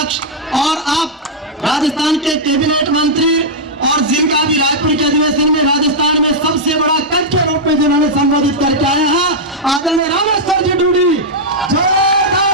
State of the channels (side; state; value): both; normal; correlation -0.05